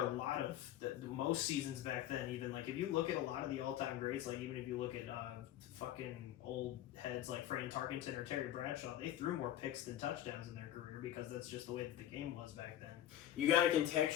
a lot of most seasons back then. Even like if you look at a lot of the all-time greats, like even if you look at fucking old heads like Fran Tarkenton or Terry Bradshaw, they threw more picks than touchdowns in their career because that's just the way that the game was back then. You got to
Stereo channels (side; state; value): right; quieter; 12.2 dB